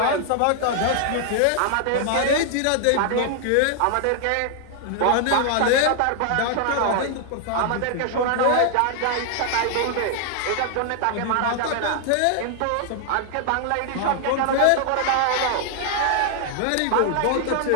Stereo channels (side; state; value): both; different; correlation 0.00